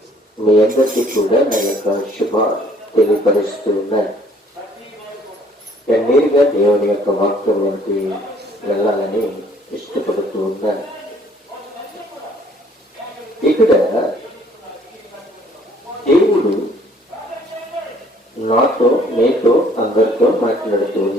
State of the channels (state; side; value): normal; both; correlation 0.60